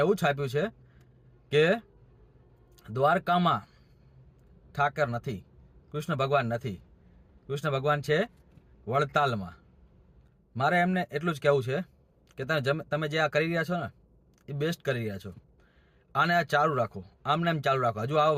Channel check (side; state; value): both; identical; correlation 1.00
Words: એવું છાપ્યું છે કે દ્વારકામાં ઠાકર નથી, કૃષ્ણ ભગવાન નથી, કૃષ્ણ ભગવાન છે વડતાલમાં. મારે એમને એટલું જ કહેવું છે કે તમે જે આ કરી રહ્યા છો ને એ બેસ્ટ કરી રહ્યા છો. આને આ ચાલુ રાખો, આમને એમ ચાલુ રાખો, હજુ આવો